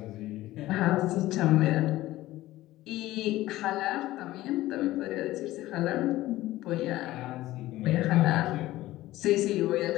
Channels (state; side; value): quieter; right; 16.4 dB